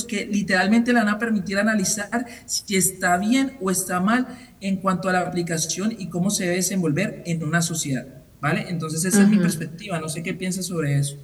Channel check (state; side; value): identical; both; correlation 1.00